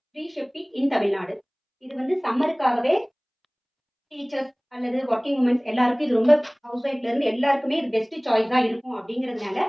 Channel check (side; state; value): both; identical; correlation 1.00